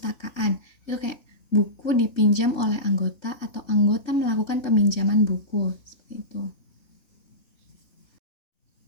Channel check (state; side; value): late; right; 3.4 ms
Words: Itu kayak buku dipinjam oleh anggota atau anggota melakukan peminjaman buku, seperti itu.